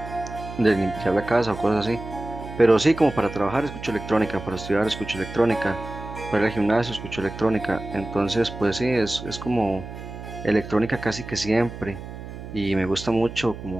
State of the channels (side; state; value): right; noise; hum, 11 dB below the sound